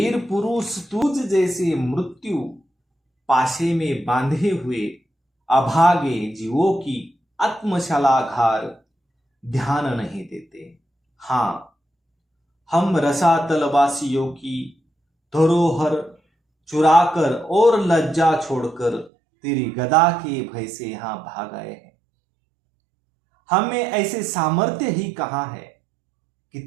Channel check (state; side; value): drops out; left; at 19.1 s